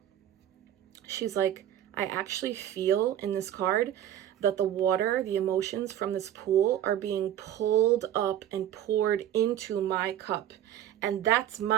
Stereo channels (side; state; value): left; quieter; 11.3 dB